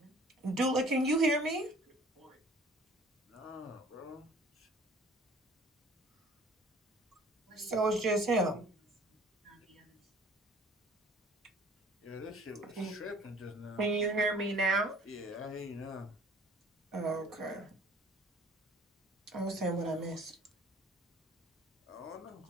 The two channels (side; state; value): both; normal; correlation 0.52